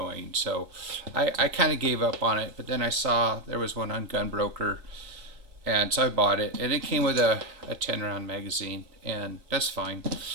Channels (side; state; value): left; late; 3.9 ms